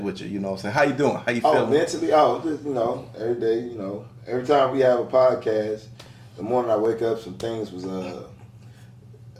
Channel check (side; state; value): both; identical; correlation 1.00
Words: you? You know what I'm saying? How you doing? How you feeling? Oh, mentally, just, every day, every time we have a podcast, the morning I wake up, some things was,